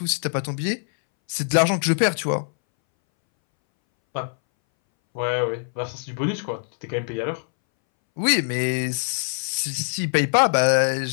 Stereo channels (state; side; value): silent; right; 62 dB below the other